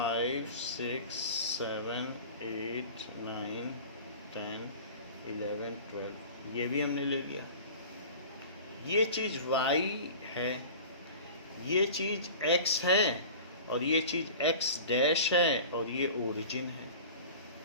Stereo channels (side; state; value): both; inverted; correlation -0.39